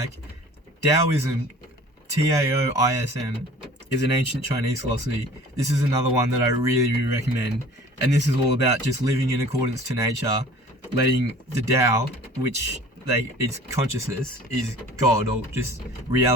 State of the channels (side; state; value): both; normal; correlation 0.47